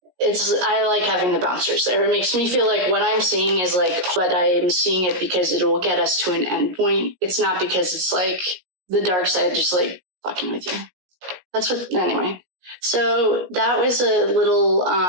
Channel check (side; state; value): left; late; 17 ms